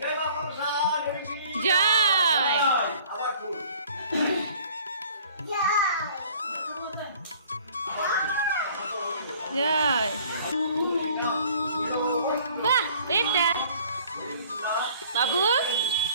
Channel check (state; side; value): inverted; both; correlation -0.53